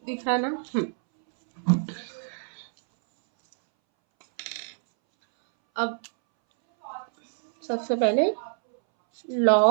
दिख रहा ना? अब सबसे पहले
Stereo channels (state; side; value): silent; left; 61 dB below the other